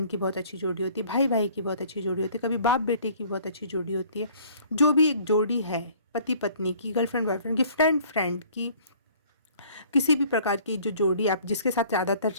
की बहुत अच्छी जोड़ी होती है, भाई भाई की बहुत अच्छी जोड़ी होती है, कभी बाप बेटे की बहुत अच्छी जोड़ी होती है। जो भी एक जोड़ी है, पति पत्नी की, गर्लफ्रेंड बॉयफ्रेंड की, फ्रेंड फ्रेंड की, किसी भी प्रकार की जो जोड़ी आप जिसके साथ ज़्यादातर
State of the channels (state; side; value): inverted; both; correlation -0.54